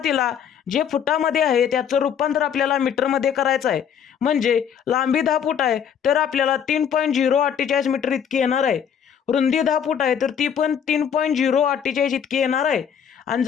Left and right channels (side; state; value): right; quieter; 8.1 dB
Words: जे फुटामध्ये आहे त्याचं रूपांतर आपल्याला मीटरमध्ये करायचं आहे. म्हणजे लांबी 10 फूट आहे तर आपल्याला 3.048 मीटर इतकी येणार आहे. रुंदी 10 फूट आहे तर ती पण 3.048 इतकी येणार आहे. आणि